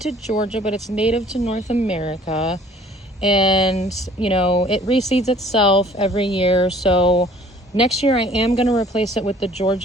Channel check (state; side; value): normal; both; correlation 0.54